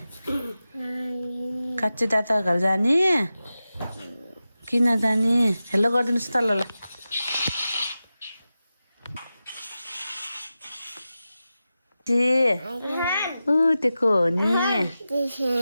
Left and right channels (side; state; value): both; inverted; correlation -0.93